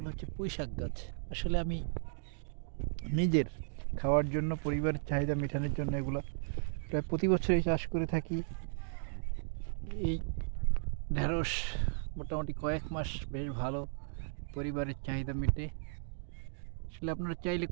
হচ্ছে পুঁই শাক গাছ। আসলে আমি নিজের খাওয়ার জন্য, পরিবারের চাহিদা মেটানোর জন্য এগুলো প্রায় প্রতি বছরই চাষ করে থাকি। এই ঢেঁড়স মোটামুটি কয়েক মাস বেশ ভালো পরিবারের চাহিদা মেটে। আসলে আপনারা চাইলে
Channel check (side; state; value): left; silent; digital silence